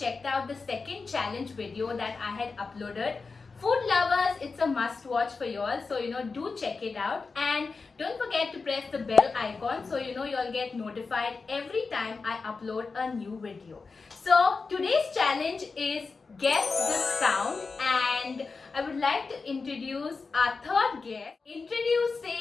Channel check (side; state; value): right; quieter; 4.4 dB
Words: out the second challenge video that I had uploaded. Food lovers, it's a must watch for you all, so do check it out, and don't forget to press the bell icon so you all get notified every time I upload a new video. So today's challenge is guess the sound, and I would like to introduce our third guest.